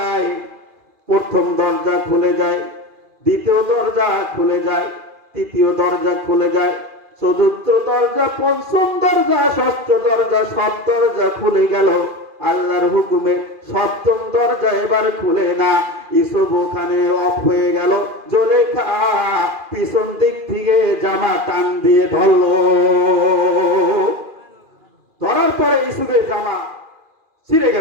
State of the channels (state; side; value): late; left; 2.4 ms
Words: প্রথম দরজা খুলে যায়, দ্বিতীয় দরজা খুলে যায়, তৃতীয় দরজা খুলে যায়, চতুর্থ দরজা, পঞ্চম দরজা, ষষ্ঠ দরজা, সব দরজা খুলে গেল। আল্লাহর হুকুমে সপ্তম দরজা এবার খুলে না। ইউসুফ ওখানে অফ হয়ে গেল। জুলেখা পিছন দিক থেকে জামা টান দিয়ে ধরলো। ধরার পরে ইউসুফের জামা ছিঁড়ে